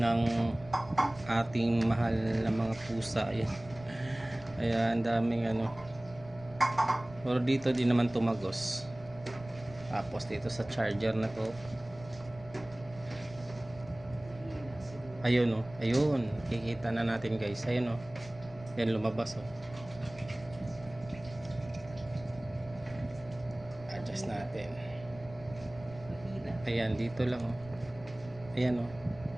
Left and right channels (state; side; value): noise; right; rumble, 19 dB below the sound